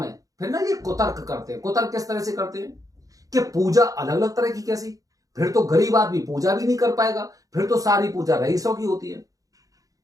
फिर ना ये कुतर्क करते हैं। कुतर्क किस तरह से करते हैं कि पूजा अलग अलग तरह की, कैसी? फिर तो गरीब आदमी पूजा भी नहीं कर पाएगा, फिर तो सारी पूजा रईसों की होती है।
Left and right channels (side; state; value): left; late; 0.17 ms